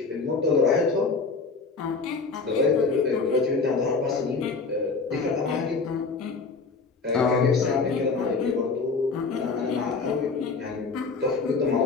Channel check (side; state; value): right; quieter; 4.4 dB